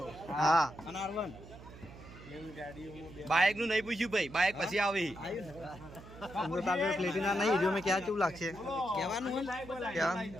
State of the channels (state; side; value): noise; right; hum, 17 dB below the sound